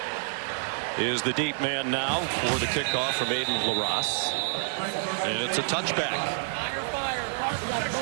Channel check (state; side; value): silent; left; digital silence